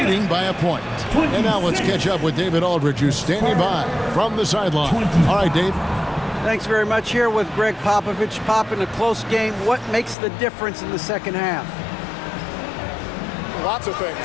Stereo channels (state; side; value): drops out; right; at 10.2 s